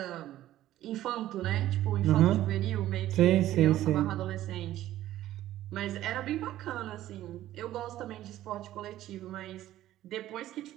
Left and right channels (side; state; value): left; quieter; 13.8 dB